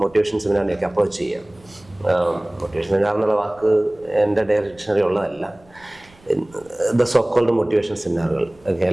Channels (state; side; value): noise; right; rumble, 28 dB below the sound